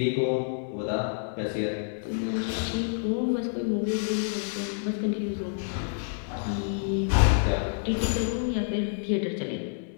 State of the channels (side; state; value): right; silent; digital silence